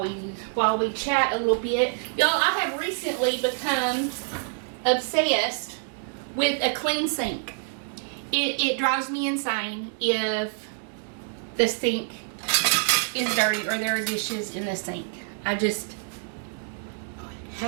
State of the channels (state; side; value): silent; left; digital silence